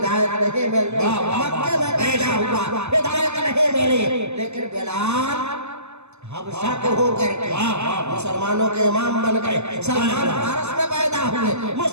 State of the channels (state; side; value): late; left; 0.81 ms